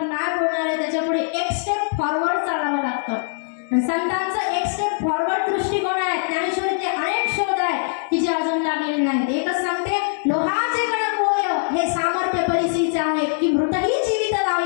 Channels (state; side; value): silent; right; digital silence